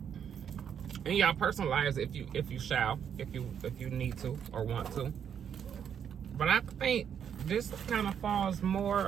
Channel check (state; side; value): quieter; left; 8.3 dB